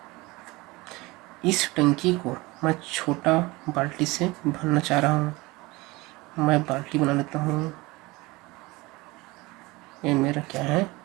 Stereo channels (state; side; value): quieter; left; 22.3 dB